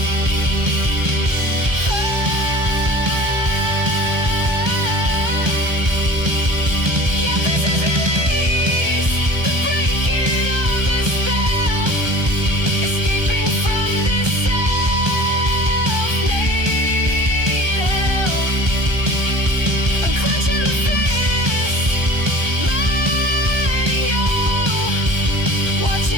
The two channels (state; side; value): late; left; 1.2 ms